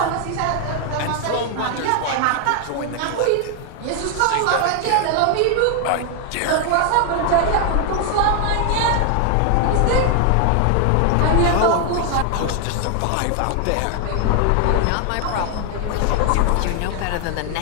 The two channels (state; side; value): different; both; correlation 0.00